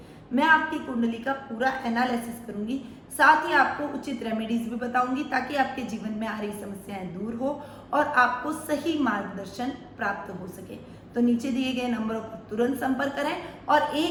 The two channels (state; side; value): identical; both; correlation 1.00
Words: मैं आपकी कुंडली का पूरा एनालिसिस करूंगी, साथ ही आपको उचित रेमेडीज भी बताऊंगी ताकि आपके जीवन में आ रही समस्याएं दूर हो और आपको सही मार्गदर्शन प्राप्त हो सके। तो नीचे दिए गए नंबरों पर तुरंत संपर्क करें और